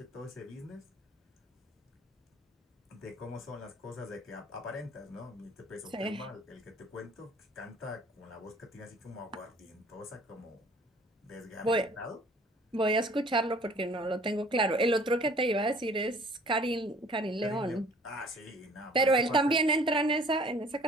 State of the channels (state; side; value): normal; both; correlation 0.53